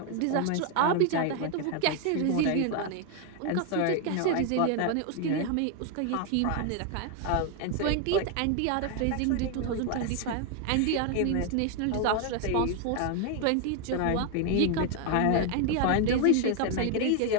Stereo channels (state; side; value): different; both; correlation 0.01